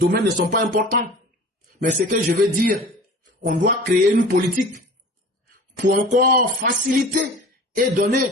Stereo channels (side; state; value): both; normal; correlation 0.41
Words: ne sont pas importants. Mais ce que je veux dire, on doit créer une politique pour encore faciliter et donner